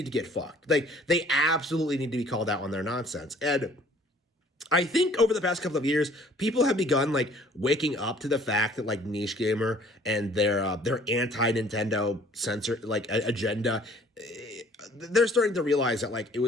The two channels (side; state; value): both; normal; correlation 0.55